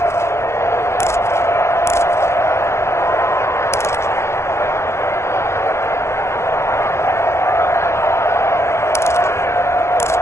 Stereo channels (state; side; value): late; right; 0.13 ms